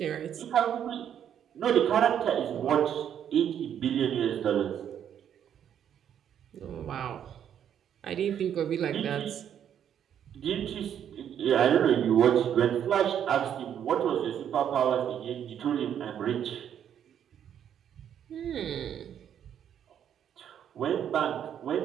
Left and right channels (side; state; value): left; quieter; 9.3 dB